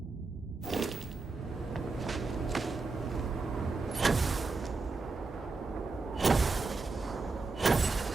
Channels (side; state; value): left; quieter; 3.9 dB